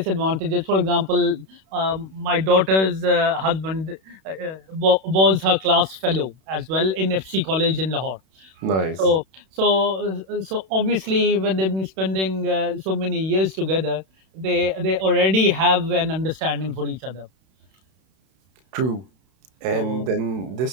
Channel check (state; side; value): late; left; 31 ms